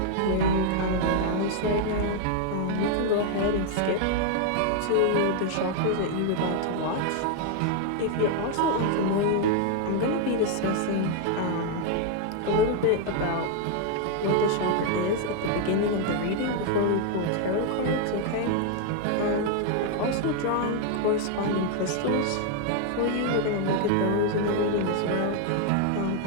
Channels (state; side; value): different; both; correlation 0.00